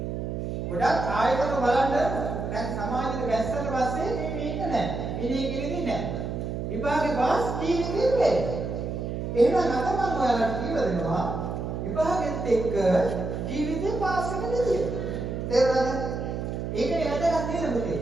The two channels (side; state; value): right; noise; hum, 4 dB below the sound